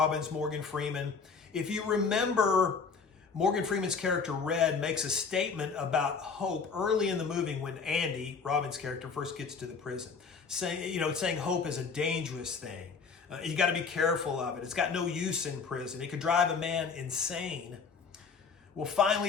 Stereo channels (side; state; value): right; quieter; 5.3 dB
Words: Morgan Freeman. If you remember, Morgan Freeman's character Red makes a statement about hope early in the movie when Andy, Robbins' character, first gets to the prison, saying hope is a dangerous thing. You got to be careful of it. It's got no use in prison. It could drive a man insane. Well,